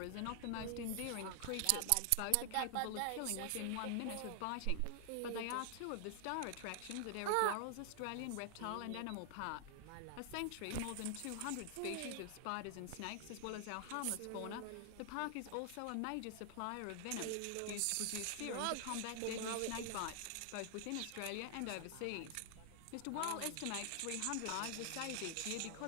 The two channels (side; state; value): both; different; correlation 0.00